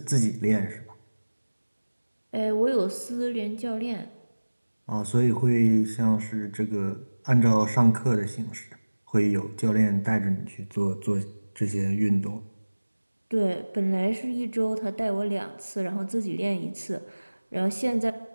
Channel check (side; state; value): both; inverted; correlation -1.00